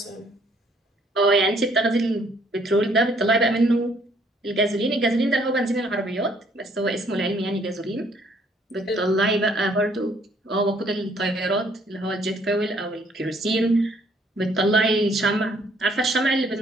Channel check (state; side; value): normal; both; correlation 0.64